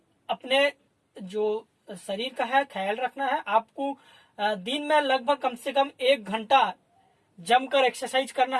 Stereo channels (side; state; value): both; identical; correlation 1.00